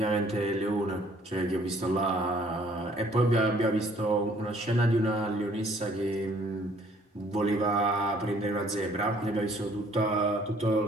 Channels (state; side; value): normal; both; correlation 0.60